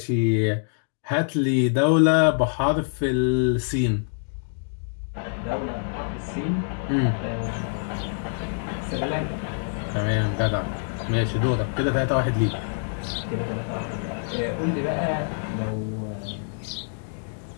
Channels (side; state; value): right; silent; digital silence